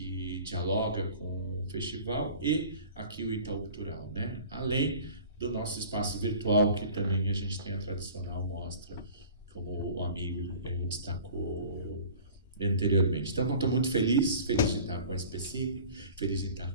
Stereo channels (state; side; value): inverted; both; correlation -0.44